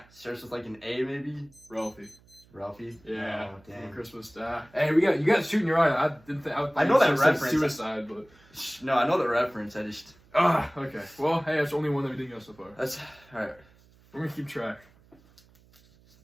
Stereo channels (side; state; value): right; noise; hum, 29 dB below the sound